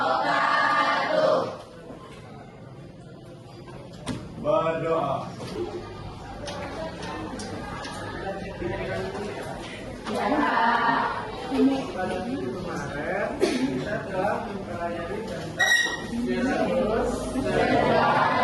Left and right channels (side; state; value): both; identical; correlation 1.00